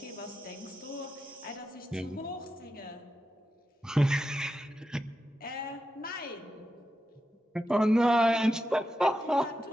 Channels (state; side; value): normal; both; correlation 0.88